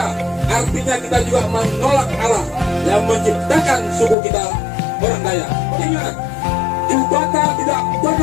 artinya kita juga menolak Allah yang menciptakan suku kita, orang Dayak. Ingat, Jubata tidak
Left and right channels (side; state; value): right; drops out; at 4.2 s